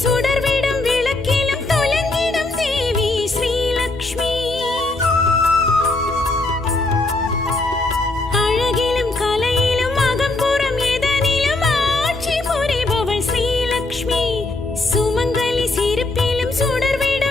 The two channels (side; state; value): right; quieter; 3.0 dB